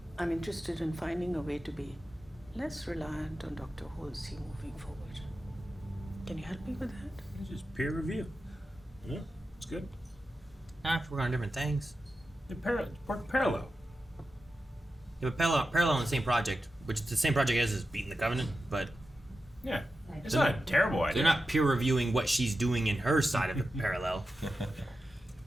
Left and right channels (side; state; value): both; normal; correlation 0.91